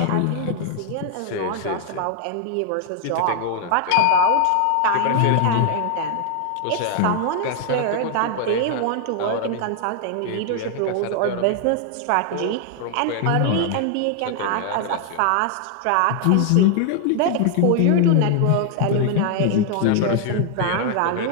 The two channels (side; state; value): both; different; correlation 0.00